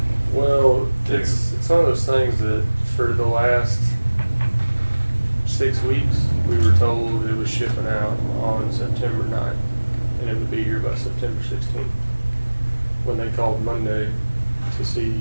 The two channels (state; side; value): inverted; both; correlation -1.00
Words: Well, it's one of those things that for the last 6 weeks, we were told it was shipping out on September 9th, and it would be here by September 16th. When they called Monday to see